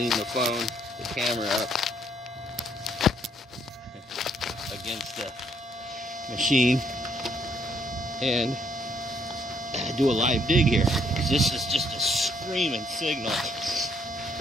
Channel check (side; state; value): both; normal; correlation 0.69